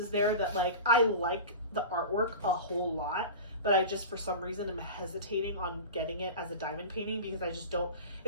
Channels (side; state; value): both; inverted; correlation -0.31